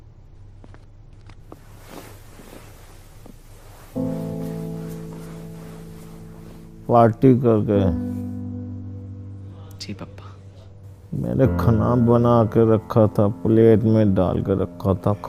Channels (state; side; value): identical; both; correlation 1.00